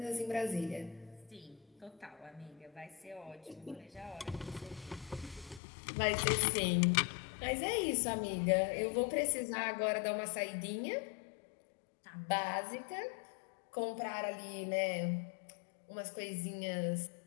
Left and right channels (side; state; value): right; drops out; at 5.6 s